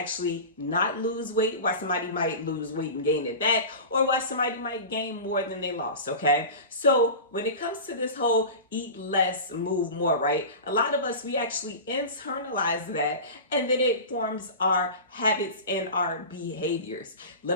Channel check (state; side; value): inverted; both; correlation -0.30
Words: not lose weight, why somebody might lose weight and gain it back, or why somebody might gain more than they lost, okay? So when it comes to this whole eat less, move more, right? A lot of us, we actually internalize that, and then it forms our habits and our behaviors. Let